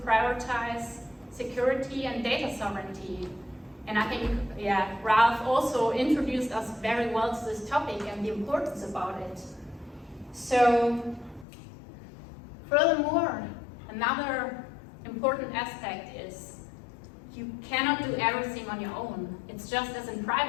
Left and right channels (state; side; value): drops out; right; at 11.5 s